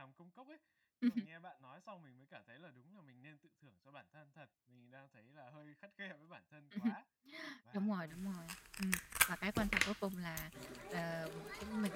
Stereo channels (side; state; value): both; identical; correlation 1.00